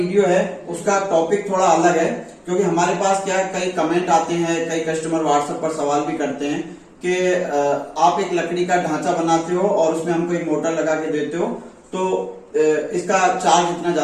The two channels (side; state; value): both; identical; correlation 1.00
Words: है उसका टॉपिक थोड़ा अलग है, क्योंकि हमारे पास क्या है, कई कमेंट आते हैं, कई कस्टमर व्हाट्सएप पर सवाल भी करते हैं कि आप एक लकड़ी का ढांचा बनाते हो और उसमें हमको एक मोटर लगा के देते हो, तो इसका चार्ज इतना